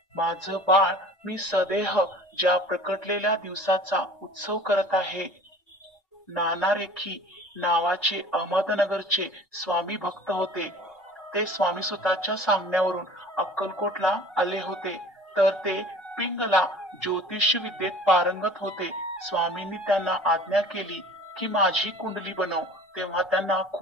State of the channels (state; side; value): normal; both; correlation 0.45